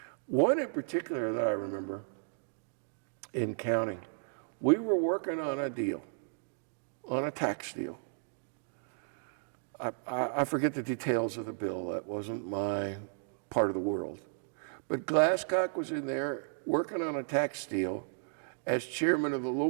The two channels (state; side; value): silent; left; digital silence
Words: One in particular that I remember in counting, we were working on a deal, on a tax deal. I forget the details of the bill. That wasn't my part of the world. But Glasscock was in there working on a tax deal as chairman of the